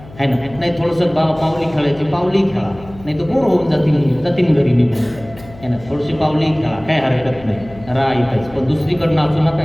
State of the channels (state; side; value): noise; left; hum, 19 dB below the sound